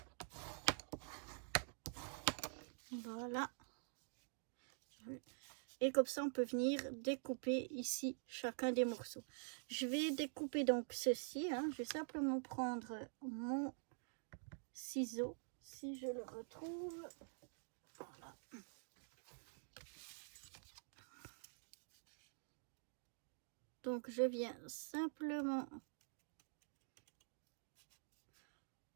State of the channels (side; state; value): left; silent; digital silence